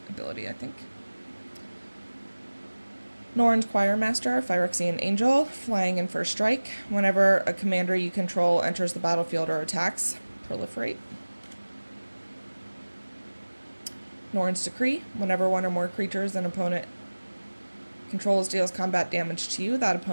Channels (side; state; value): both; inverted; correlation -1.00